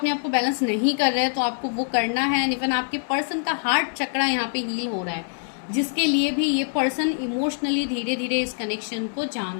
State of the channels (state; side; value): silent; right; digital silence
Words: आप को बैलेंस नहीं कर रहे हैं, तो आपको वो करना है। इवन आपके पर्सन का हार्ट चक्रा यहाँ पे हील हो रहा है, जिसके लिए भी ये पर्सन इमोशनली धीरे धीरे इस कनेक्शन को जान